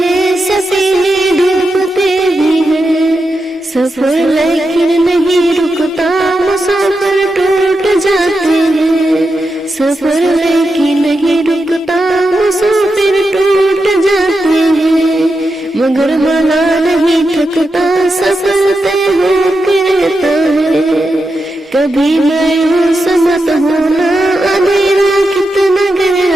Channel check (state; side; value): normal; both; correlation 0.88